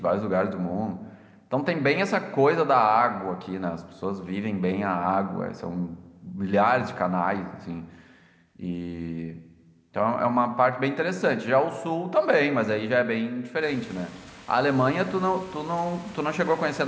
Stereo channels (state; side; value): identical; both; correlation 1.00